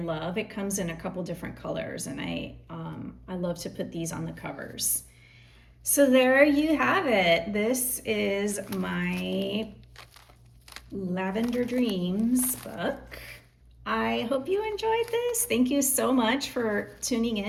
It comes in a couple different colors, and I love to put these on the covers. So there you have it. This is my Lavender Dreams book. I hope you enjoyed this. Thank you so much for tuning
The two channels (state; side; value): identical; both; correlation 1.00